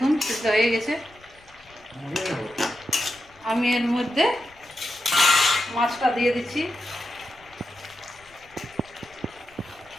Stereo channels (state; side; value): noise; left; rumble, 28 dB below the sound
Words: সিদ্ধ হয়ে গেছে। আমি এর মধ্যে মাছটা দিয়ে দিচ্ছি।